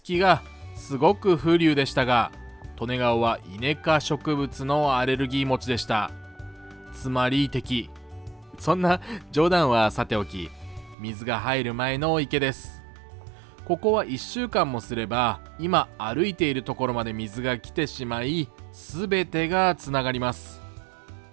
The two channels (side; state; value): left; drops out; at 11.0 s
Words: キがすごく風流でしたが、利根川はイネ科植物のアレルギー持ちでした。つまり敵。そんな冗談はさておき、水が入る前の池です。ここは1週間もすれば今歩いているところまで水が来てしまい、全てがつながります。